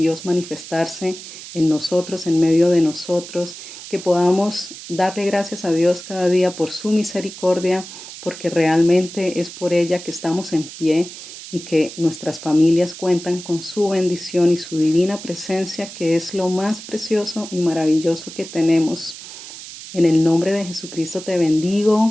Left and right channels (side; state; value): right; noise; hiss, 13 dB below the sound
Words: manifestarse en nosotros, en medio de nosotros, que podamos darle gracias a Dios cada día por su misericordia, porque realmente es por ella que estamos en pie y que nuestras familias cuentan con su bendición y su divina presencia, que es lo más precioso y maravilloso que tenemos. En el nombre de Jesucristo te